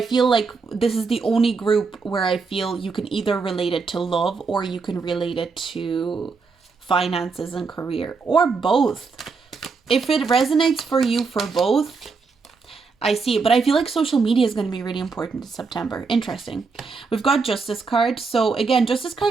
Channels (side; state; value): left; quieter; 4.7 dB